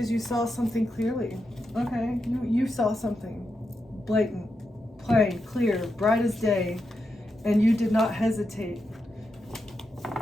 you saw something clearly. Okay, you saw something blatant, plain, clear, bright as day, and you did not hesitate.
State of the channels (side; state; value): both; normal; correlation 0.86